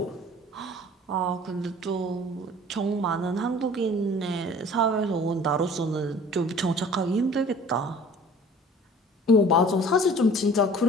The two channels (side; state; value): both; normal; correlation 0.48